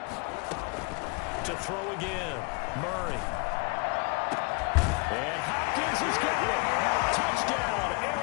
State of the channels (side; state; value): right; quieter; 31.0 dB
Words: To throw again, Murray. And Hopkins has got it. Touchdown,